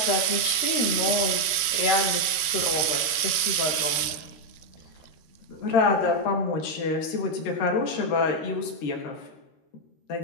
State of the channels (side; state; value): right; late; 13 ms